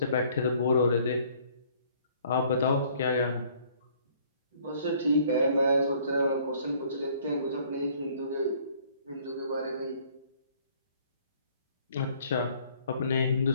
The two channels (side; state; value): both; inverted; correlation -0.59